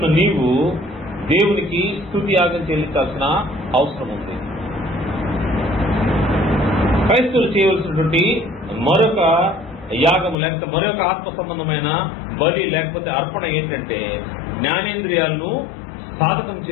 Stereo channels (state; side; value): drops out; right; at 10.4 s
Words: నీవు దేవునికి స్తుతి యాగం చెల్లించాల్సిన అవసరం ఉంది. క్రైస్తవులు చేయవలసినటువంటి మరొక యాగము లేకపోతే మరొక ఆత్మ సంబంధమైన బలి లేకపోతే అర్పణ ఏంటంటే జ్ఞానేంద్రియాలను సాధకం